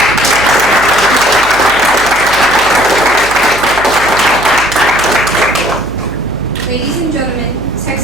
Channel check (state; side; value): noise; right; hum, 15 dB below the sound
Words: Ladies and gentlemen,